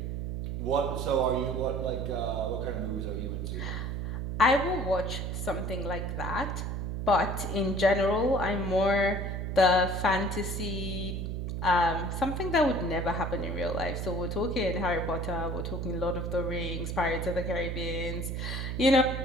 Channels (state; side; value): noise; right; hum, 3 dB below the sound